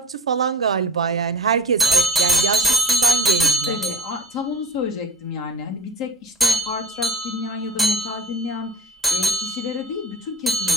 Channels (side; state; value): both; normal; correlation 0.38